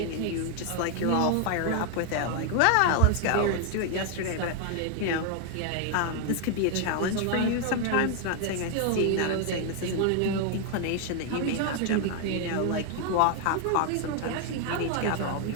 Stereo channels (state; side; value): different; both; correlation 0.00